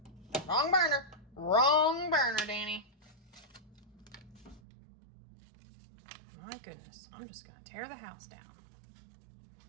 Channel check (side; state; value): left; drops out; at 4.6 s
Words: Wrong burner. Wrong burner, Danny. My goodness, I'm just gonna tear the house down.